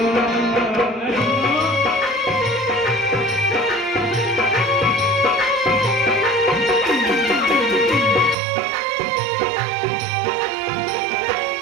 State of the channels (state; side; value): drops out; left; at 8.3 s